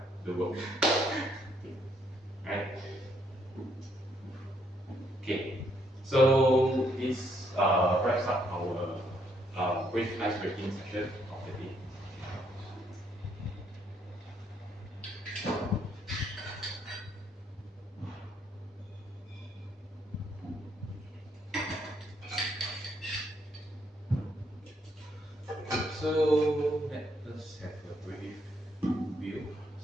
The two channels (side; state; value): both; normal; correlation 0.72